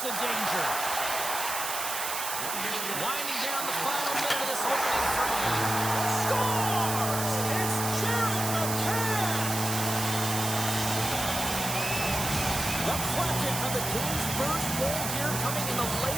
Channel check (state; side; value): noise; right; hiss, 3 dB below the sound